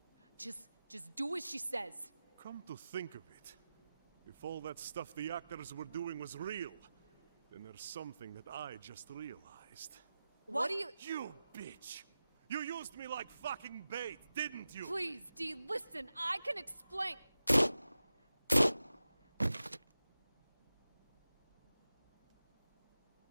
just do as she says. Come to think of it, if all that stuff the actors were doing was real, then there's something that I just realized. What do you— You bitch! You used me like fucking bait, didn't you? Please, D, listen, I can explain.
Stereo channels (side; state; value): both; inverted; correlation -0.93